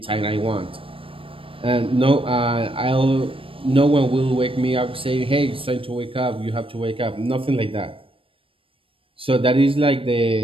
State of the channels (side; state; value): left; late; 0.26 ms